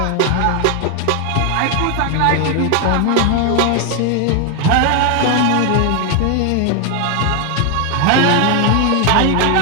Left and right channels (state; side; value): different; both; correlation 0.01